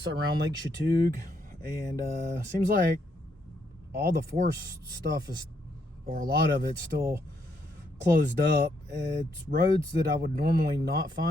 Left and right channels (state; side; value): normal; both; correlation 0.75